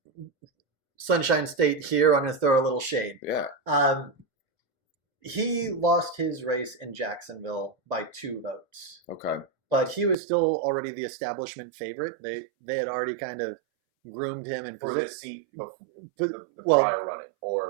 Sunshine State here, I'm going to throw a little shade. Yeah. He lost his race in Jacksonville by 2 votes. Okay. But he was still already the establishment favorite. They had already kind of groomed him and for this seat before the prior running,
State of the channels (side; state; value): left; drops out; at 10.2 s